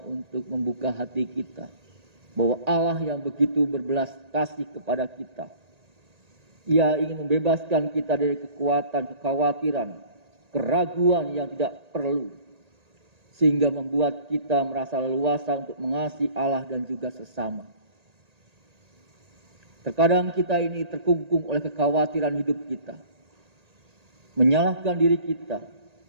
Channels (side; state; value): left; late; 1.8 ms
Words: untuk membuka hati kita bahwa Allah yang begitu berbelas kasih kepada kita, Ia ingin membebaskan kita dari kekuatan, kekhawatiran, keraguan yang tidak perlu, sehingga membuat kita merasa leluasa untuk mengasihi Allah dan juga sesama. Terkadang kita ini terkungkung oleh kekhawatiran hidup kita, menyalahkan diri kita,